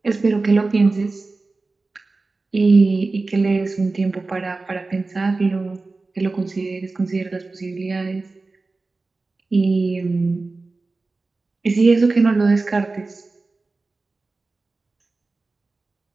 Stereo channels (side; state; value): left; quieter; 3.6 dB